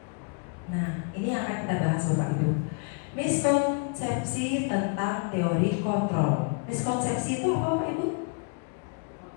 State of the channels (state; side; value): quieter; right; 36.0 dB